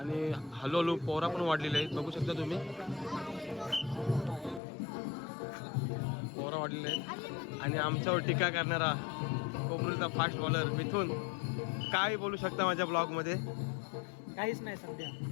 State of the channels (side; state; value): right; drops out; at 4.6 s